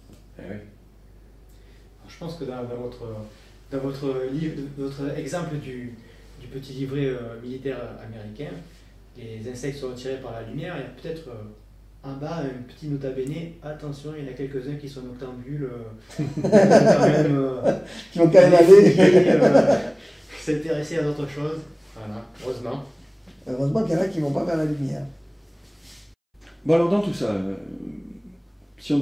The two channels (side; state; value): both; identical; correlation 1.00